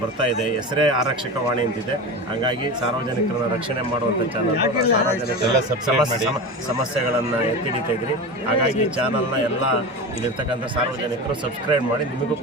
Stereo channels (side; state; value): both; normal; correlation 0.26